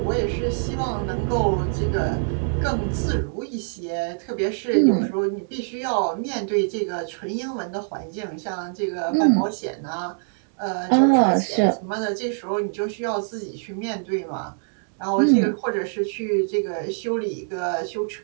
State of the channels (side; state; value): left; silent; digital silence